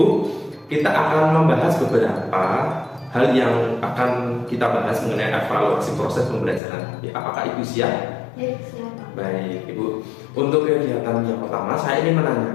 kita akan membahas beberapa hal yang akan kita bahas mengenai evaluasi proses pembelajaran. Apakah Ibu siap? Ya, siap. Baik, Ibu. Untuk kegiatan yang pertama, saya ingin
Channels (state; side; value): drops out; right; at 6.6 s